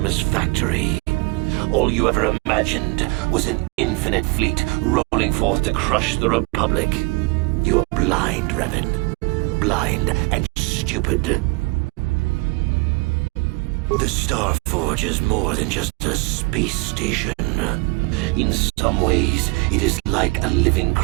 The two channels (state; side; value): quieter; left; 27.1 dB